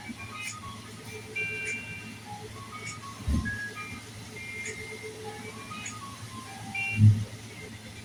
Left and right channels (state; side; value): identical; both; correlation 1.00